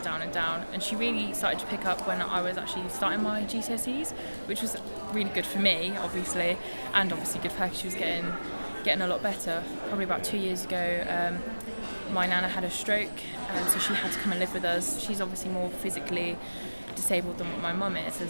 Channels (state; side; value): inverted; both; correlation -1.00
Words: down and down, and she really started to pick up when I was actually starting my GCSEs, which was really good for me, obviously, and obviously good for her because she was getting a lot better. Probably about 2 years ago, my nana had a stroke, so she had to come and live with us. She's obviously more physically disabled than what my mum is.